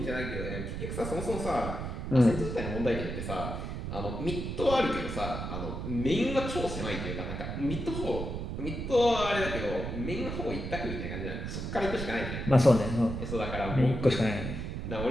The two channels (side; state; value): right; noise; rumble, 5 dB below the sound